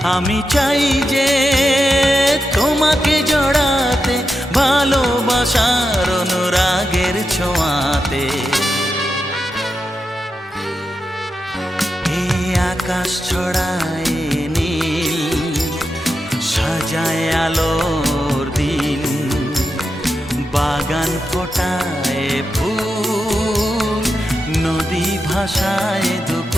আমি চাই যে তোমাকে জড়াতে ভালোবাসার অনুরাগের ছোঁয়াতে। এই আকাশ ছড়ায় নীল সাজায় আলোর দিন। বাগান ফোটায় ভাষায়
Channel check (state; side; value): normal; both; correlation 0.88